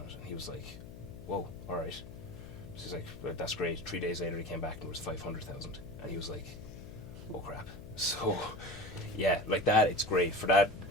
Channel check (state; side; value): noise; left; hum, 14 dB below the sound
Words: it. And he was like, whoa, all right. So he's like, well, that's great. 3 days later he came back and it was 500,000. And he was like, oh crap. So yeah, like that, it's great for that.